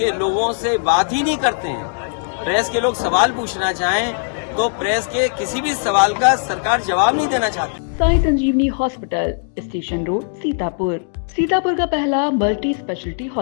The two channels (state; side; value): silent; right; digital silence